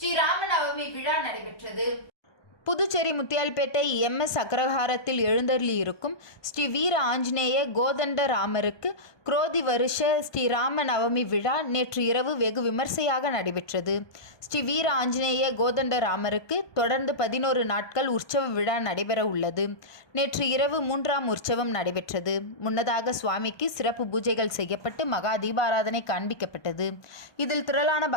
ராமநவமி விழா நடைபெற்றது. புதுச்சேரி முத்தியால்பேட்டை MS அக்ரஹாரத்தில் எழுந்தருளி இருக்கும் ஸ்ரீ வீர ஆஞ்சநேய கோதண்ட ராமருக்கு குரோதி வருஷ ஸ்ரீ ராம நவமி விழா நேற்று இரவு வெகு விமர்சையாக நடைபெற்றது. ஸ்ரீ வீர ஆஞ்சநேய கோதண்ட ராமருக்கு தொடர்ந்து 11 நாட்கள் உற்சவ விழா நடைபெற உள்ளது. நேற்று இரவு 3ஆம் உற்சவம் நடைபெற்றது. முன்னதாக சுவாமிக்கு சிறப்பு பூஜைகள் செய்யப்பட்டு மகா தீபாராதனை காண்பிக்கப்பட்டது. இதில் திரளான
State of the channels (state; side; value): late; right; 1.2 ms